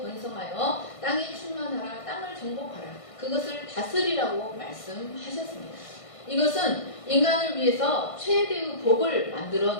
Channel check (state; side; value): late; right; 1.5 ms